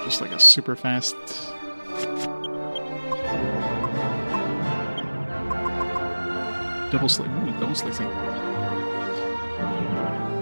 Just like a super fast double slice. Ooh, double slicing.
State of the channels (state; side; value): inverted; both; correlation -1.00